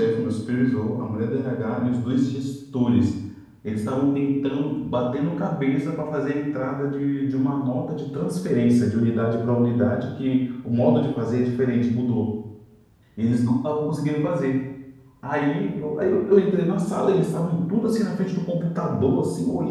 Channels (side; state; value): both; identical; correlation 1.00